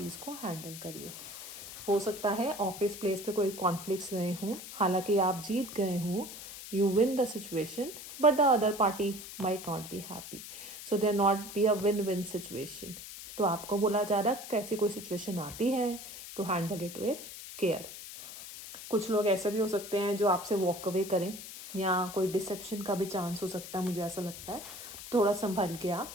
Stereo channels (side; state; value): left; noise; hiss, 12 dB below the sound